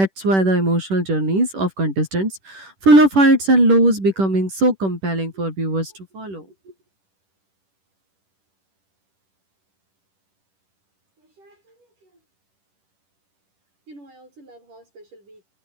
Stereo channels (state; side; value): late; left; 10 ms